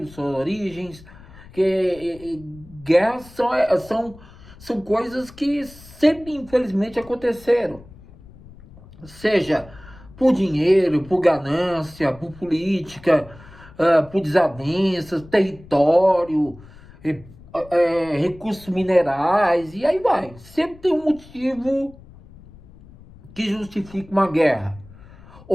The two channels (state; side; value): noise; left; rumble, 21 dB below the sound